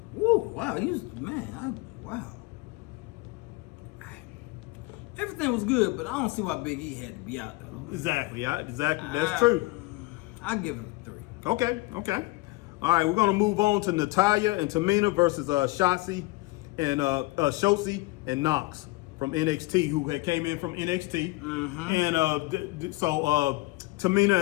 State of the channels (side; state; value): right; quieter; 21.7 dB